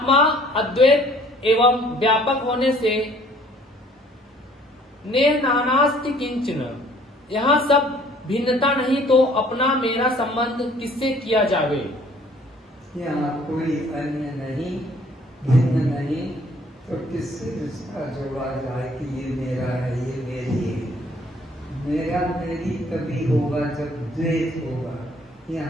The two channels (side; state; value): both; normal; correlation 0.57